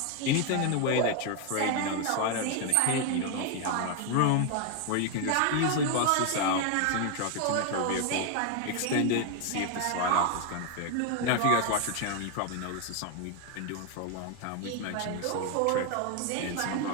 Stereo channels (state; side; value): different; both; correlation 0.00